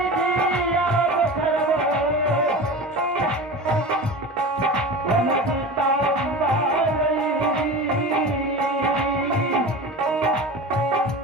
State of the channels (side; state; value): both; normal; correlation 0.32